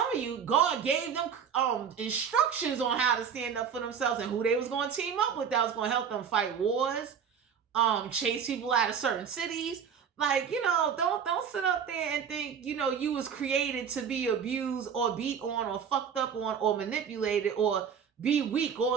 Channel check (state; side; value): quieter; left; 7.3 dB